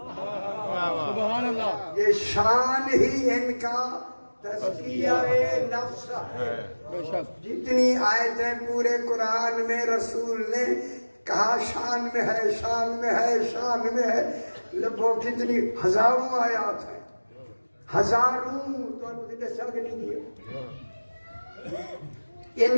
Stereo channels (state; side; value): inverted; both; correlation -1.00